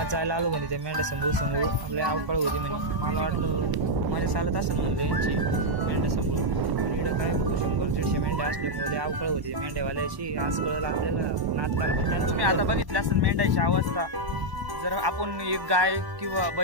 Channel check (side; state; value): left; late; 1.0 ms